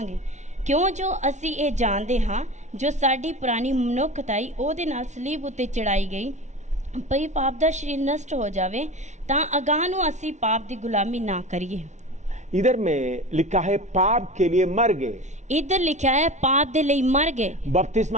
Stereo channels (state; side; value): late; left; 0.34 ms